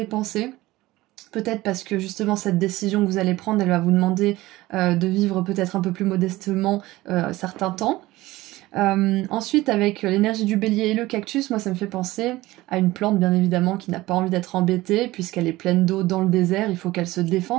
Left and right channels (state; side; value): quieter; left; 18.2 dB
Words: Peut-être parce que justement cette décision que vous allez prendre, elle va vous demander de vivre peut-être un peu plus modestement certains temps. Ensuite, avec l'énergie du bélier et le cactus, moi ça me fait penser à une plante bien évidemment qui n'a pas envie d'être embêtée puisqu'elle est pleine d'eau dans le désert, il faut qu'elle se